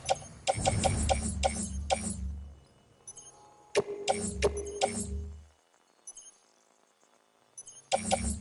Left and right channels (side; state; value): both; identical; correlation 1.00